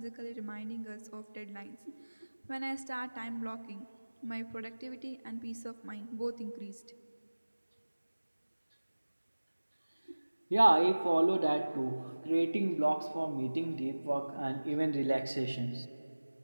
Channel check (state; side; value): inverted; both; correlation -1.00